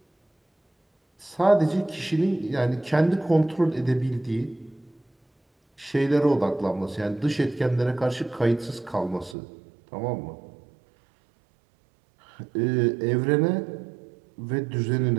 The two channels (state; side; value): drops out; left; at 9.3 s